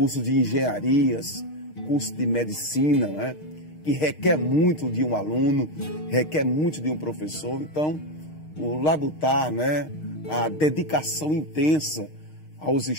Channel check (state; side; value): late; right; 6.5 ms